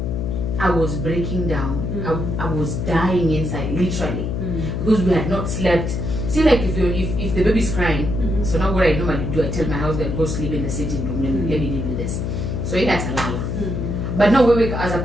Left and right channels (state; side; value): noise; left; hum, 2 dB below the sound